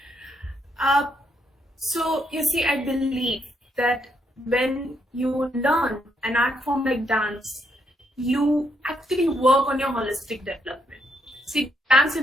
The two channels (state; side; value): normal; both; correlation 0.76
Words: So you see, I believe that when you learn an art form like dance, you actually work on your holistic development. See, dance